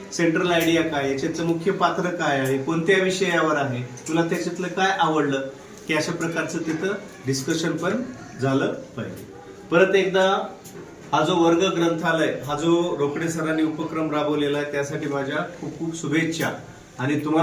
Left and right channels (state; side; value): identical; both; correlation 1.00